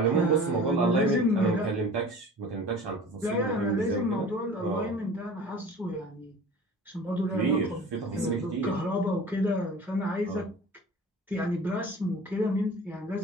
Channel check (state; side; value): normal; both; correlation 0.41